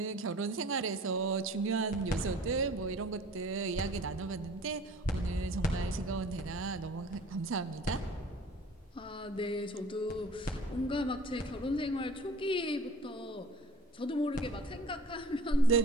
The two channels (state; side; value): normal; both; correlation 0.46